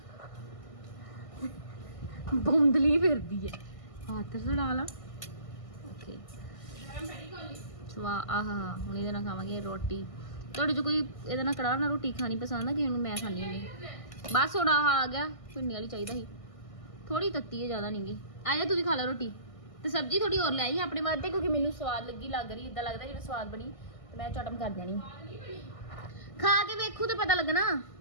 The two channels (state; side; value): late; right; 1.6 ms